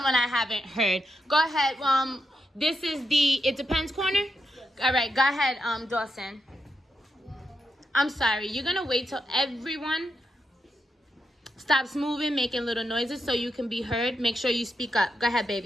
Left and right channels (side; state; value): both; normal; correlation 0.85